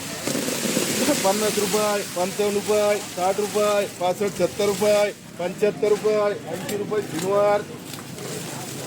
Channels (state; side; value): identical; both; correlation 1.00